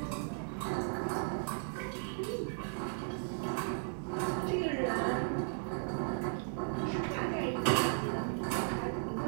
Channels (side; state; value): left; silent; 54 dB below the other